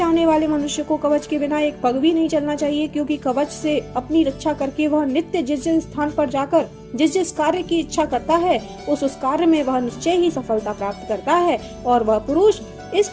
वाले मनुष्य को कवच के बिना एक पग भी नहीं चलना चाहिए, क्योंकि कवच से अपनी रक्षा करके वह नित्य जिस जिस स्थान पर जाकर जिस कार्य की इच्छा करता है उस कार्य में वह निश्चय ही सफलता प्राप्त करता है और वह पुरुष इस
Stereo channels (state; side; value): identical; both; correlation 1.00